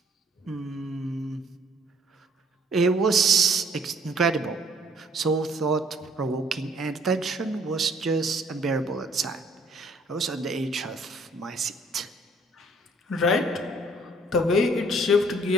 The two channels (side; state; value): both; normal; correlation 0.60